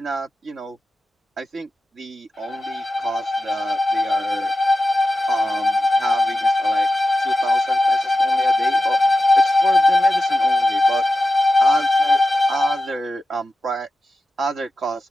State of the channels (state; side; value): normal; both; correlation 0.91